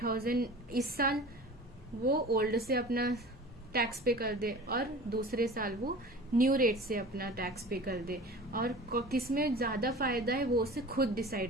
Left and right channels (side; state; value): both; normal; correlation 0.39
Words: इस साल वो ओल्ड से अपना टैक्स पे कर दे और दूसरे साल वो न्यू रेट से अपना टैक्स पे कर दे, और किसमें ज्यादा फायदा है वो उसे खुद